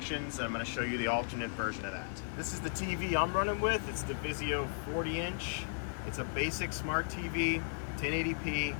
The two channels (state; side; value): silent; right; 54 dB below the other